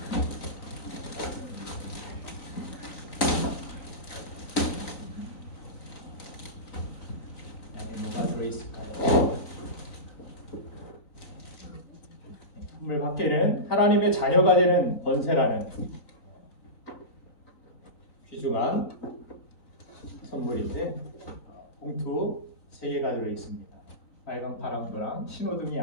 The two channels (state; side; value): late; right; 3.9 ms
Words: 안에 뭐가 들어있을까요? 선물 밖에는 하나님의 자녀가 되는 권세라는 귀중한 선물인데 봉투 3개가 들어있습니다. 빨강, 파랑, 노랑 신호등이